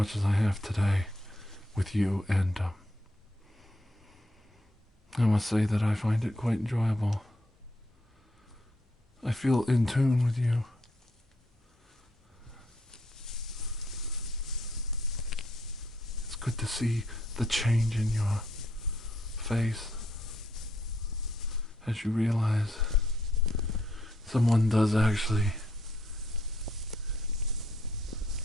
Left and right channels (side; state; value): both; normal; correlation 0.73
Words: as I have today with you, and I must say that I find it quite enjoyable. I feel in tune with you. It's good to see the change in your face as you realize someone does actually